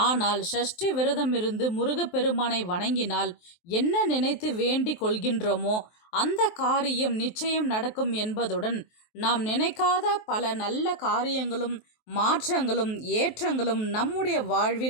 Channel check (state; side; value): late; right; 23 ms